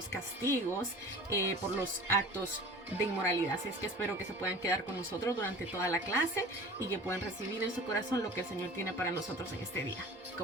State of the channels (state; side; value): normal; both; correlation 0.40